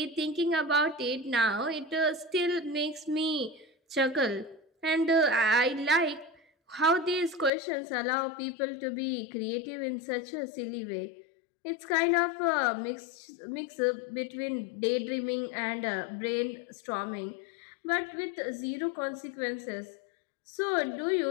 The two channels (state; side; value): drops out; right; at 7.5 s